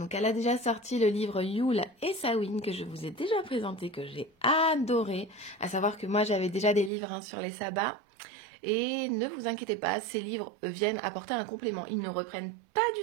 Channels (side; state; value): left; drops out; at 6.9 s